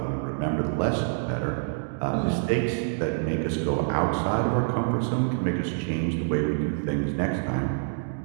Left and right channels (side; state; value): left; silent; digital silence